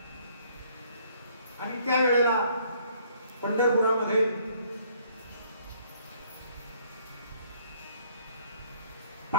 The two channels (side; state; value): both; inverted; correlation -0.63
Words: आणि त्यावेळेला पंढरपुरामध्ये